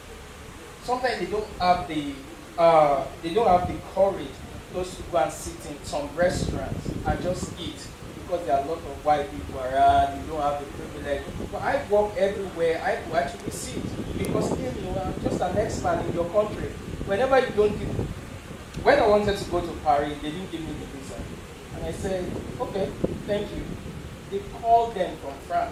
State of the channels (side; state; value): both; identical; correlation 1.00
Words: Sometimes they don't have the courage just to go and sit in some restaurants and just eat, because there are a lot of white people around, you don't have the privilege. But I walk everywhere, I will actually sit, because I'm just an expert in your country. Whenever you don't when I wanted to go to Paris, they didn't give me the visa. And I said, okay, thank you. They called them from